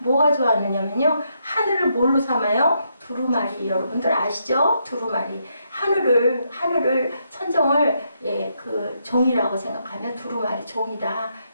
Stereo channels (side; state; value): both; inverted; correlation -0.78